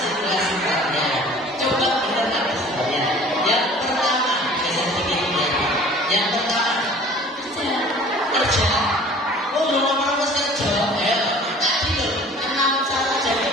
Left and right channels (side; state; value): both; normal; correlation 0.47